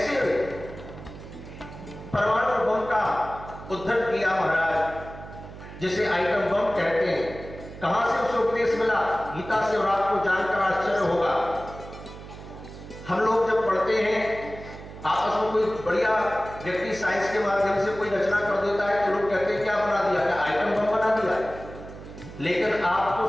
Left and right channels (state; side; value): noise; right; hum, 14 dB below the sound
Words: परमाणु बम का उद्धरण किया महाराज, जिसे आइटम बम कहते हैं। कहां से उसे उपदेश मिला? गीता से, और आपको जानकर आश्चर्य होगा, हम लोग जब पढ़ते हैं आपस में, कोई बढ़िया व्यक्ति साइंस के माध्यम से कोई रचना कर देता है तो लोग कहते हैं क्या बना दिया, क्या आइटम बम बना दिया। लेकिन आपको